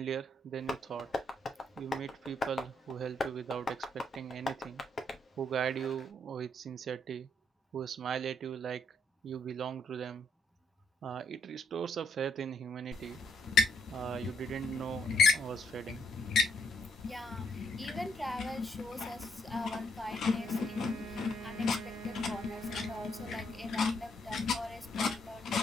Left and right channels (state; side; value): normal; both; correlation 0.73